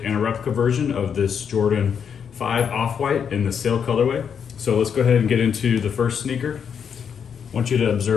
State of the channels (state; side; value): quieter; right; 7.3 dB